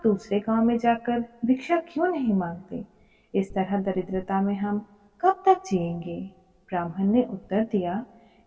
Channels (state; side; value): identical; both; correlation 1.00